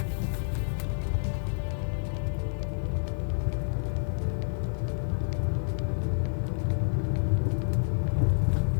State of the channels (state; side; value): silent; right; digital silence